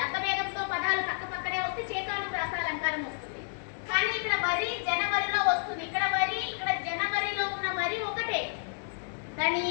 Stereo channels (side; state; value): right; silent; 56 dB below the other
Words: అర్థభేదంతో పదాలు పక్క పక్కనే వస్తే చేకానుప్రాస అలంకారం వస్తుంది. కానీ ఇక్కడ వరి జనవరిలో వస్తుంది. ఇక్కడ వరి, ఇక్కడ జనవరిలో ఉన్న వరి ఒకటే, దాని